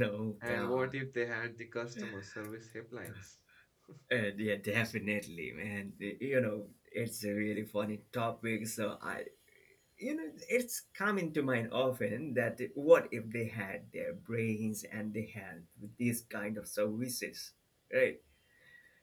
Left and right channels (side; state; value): both; identical; correlation 1.00